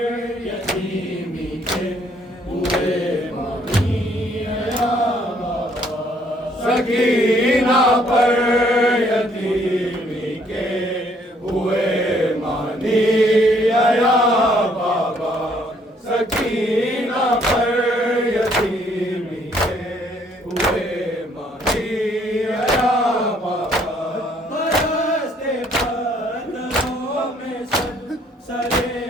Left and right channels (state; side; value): normal; both; correlation 0.65